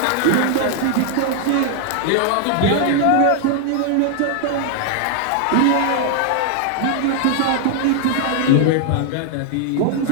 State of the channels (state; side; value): different; both; correlation 0.00